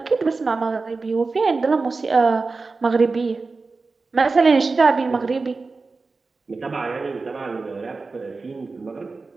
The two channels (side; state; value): left; quieter; 4.0 dB